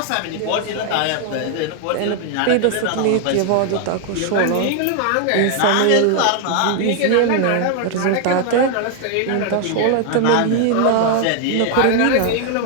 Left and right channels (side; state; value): both; different; correlation 0.00